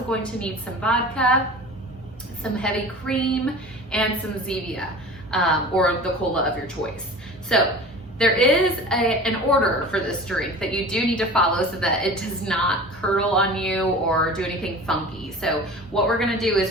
going to need some vodka, some heavy cream, and some Zevia or the cola of your choice. So there is an order for this drink that you do need to follow so that it does not curdle on you or do anything funky. So what we're gonna do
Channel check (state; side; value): normal; both; correlation 0.38